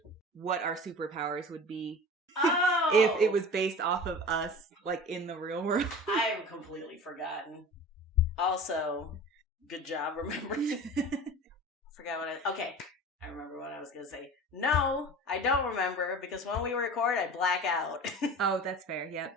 what our superpowers would be? Oh! If it was based off of us, like, in the real world. I have completely forgotten. Also, good job remembering. Forgot what okay, I remember what I was going to say. No, I don't remember, because when we record, I black out. Oh, that's fair,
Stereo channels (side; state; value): both; normal; correlation 0.37